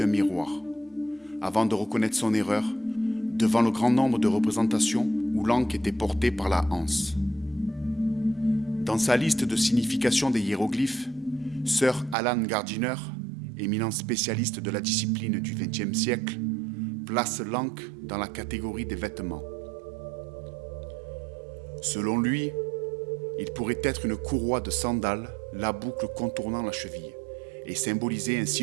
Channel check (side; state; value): left; drops out; at 12.2 s